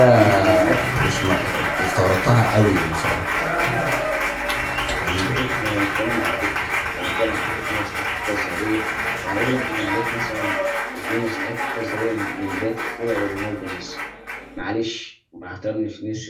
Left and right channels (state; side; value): identical; both; correlation 1.00